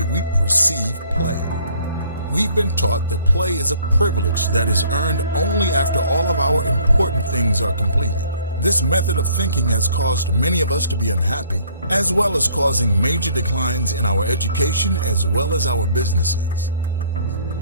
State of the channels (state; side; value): inverted; both; correlation -0.58